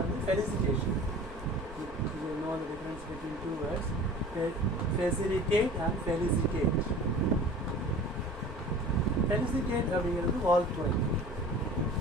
வந்து felicitation. You know the difference between two words. Facilitate and felicitate. Felicitate அப்படிங்கிறது வாழ்த்துறை.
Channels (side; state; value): both; normal; correlation 0.41